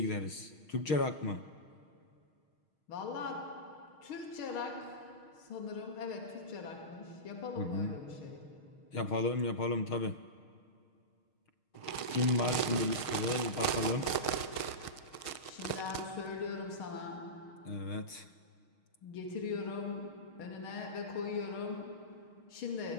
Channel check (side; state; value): right; late; 6.5 ms